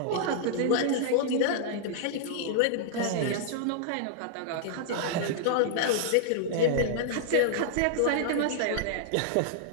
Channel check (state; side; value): different; both; correlation -0.01